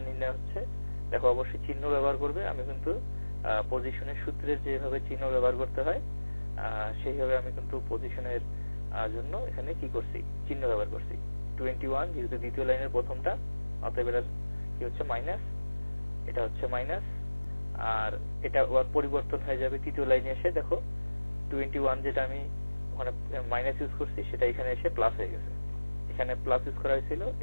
নির্ণয় হচ্ছে। দেখো অবশ্যই চিহ্ন ব্যবহার করবে, আমি কিন্তু পজিশনের সূত্রের যেভাবে চিহ্ন ব্যবহার করতে হয় সেইভাবে আমি কিন্তু পজিশনের জন্য এখানে কি করছি, চিহ্ন ব্যবহার করছি। 21 যেহেতু দ্বিতীয় লাইনের প্রথমটা, অতএব এটা কি হচ্ছে এটা হচ্ছে মাইনাস, আর এটা ওর পরিবর্তন হয়ে যাবে তৃতীয় লাইনে এসে। দেখো 21 যেটা আমি ওখানে মাইনাস ইউজ করছি সেটা এখানে এসে প্লাস হয়ে গেছে। এখানে প্লাস ইউজ করা হয়েছিল,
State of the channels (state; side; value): inverted; both; correlation -1.00